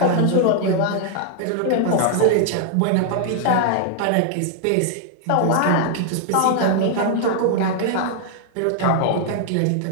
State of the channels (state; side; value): different; both; correlation -0.01